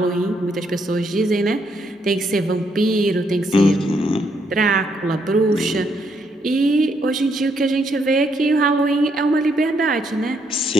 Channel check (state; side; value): normal; both; correlation 0.74